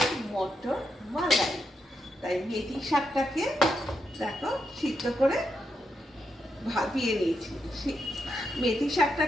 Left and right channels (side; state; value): both; normal; correlation 0.84